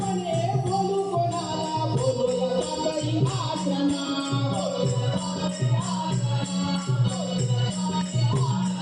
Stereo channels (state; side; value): identical; both; correlation 1.00